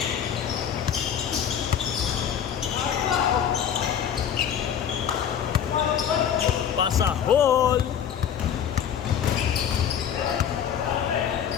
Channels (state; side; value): quieter; right; 8.8 dB